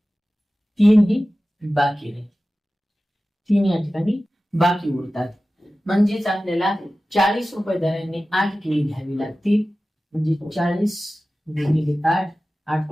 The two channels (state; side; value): normal; both; correlation 0.96